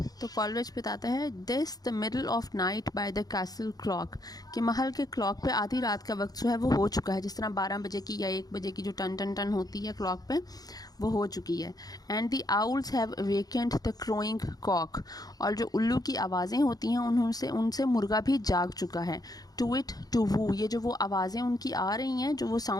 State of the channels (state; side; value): late; right; 0.18 ms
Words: तो कॉलरिज बताता है, this the middle of night by the castle clock, कि महल के क्लॉक पे आधी रात का वक्त जो है वो हो चुका है। जिस तरह 12 बजे की या 1 बजे की जो टन टन टन होती है क्लॉक पे, वो हो चुकी है। And the owls have awakened the crowing cock, और जो उल्लू की आवाज़ें होती हैं उनसे मुर्गा भी जाग चुका है। टू इट टू वू, ये जो वो आवाज़ें उनकी आ रही हैं, जो वो